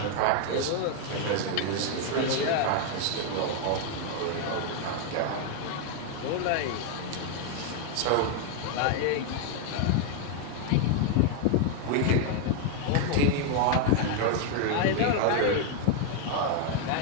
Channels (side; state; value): both; different; correlation 0.00